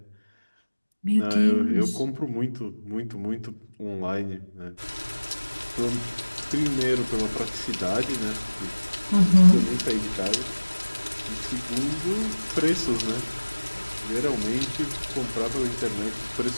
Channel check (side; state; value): both; inverted; correlation -1.00